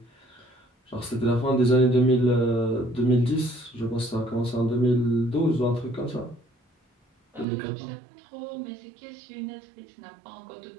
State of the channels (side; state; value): left; drops out; at 7.5 s